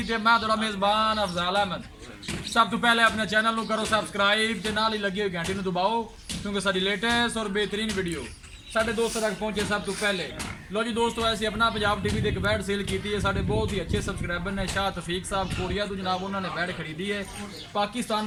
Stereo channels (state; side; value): identical; both; correlation 1.00